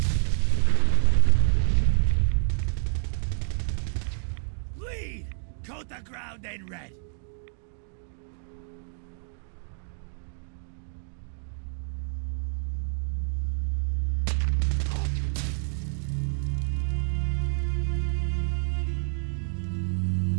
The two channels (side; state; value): left; silent; digital silence